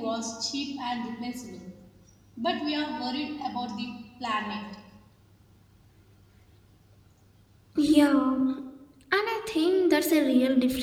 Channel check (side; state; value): both; identical; correlation 1.00